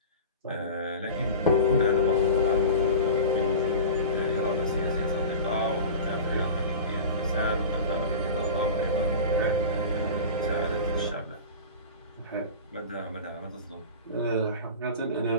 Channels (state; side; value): inverted; both; correlation -0.33